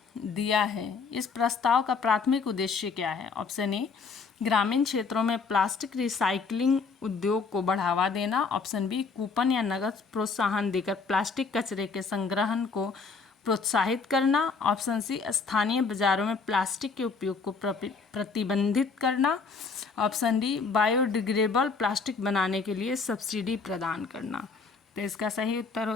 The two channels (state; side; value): quieter; right; 4.8 dB